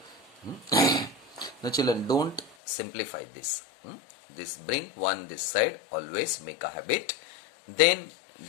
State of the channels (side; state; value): right; drops out; at 2.6 s